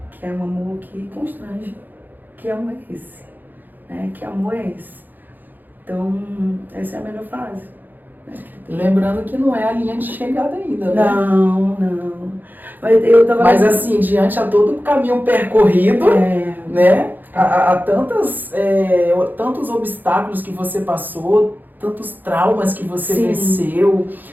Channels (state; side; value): late; left; 0.087 ms